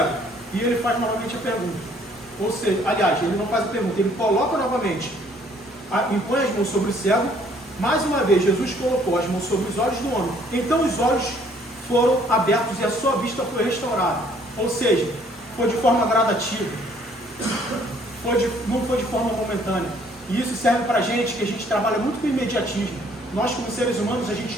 E ele faz novamente a pergunta. Ou seja, aliás, ele não faz a pergunta, ele coloca novamente. Impõe as mãos sobre o cego. Mais uma vez, Jesus colocou as mãos sobre os olhos do homem. Então os olhos foram abertos e a sua vista foi restaurada. Ou seja, foi de forma gradativa. Não foi de forma momentânea. E isso serve para a gente, que a gente trabalha muito com imediatismo. Nós, como seres humanos, a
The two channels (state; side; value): normal; both; correlation 0.61